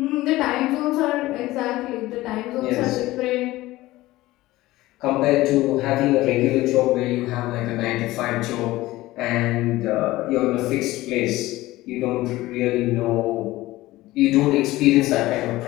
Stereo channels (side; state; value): right; quieter; 17.7 dB